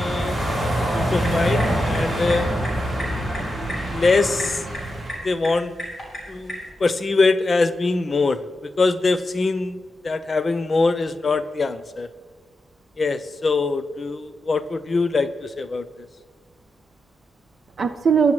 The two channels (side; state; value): both; normal; correlation 0.88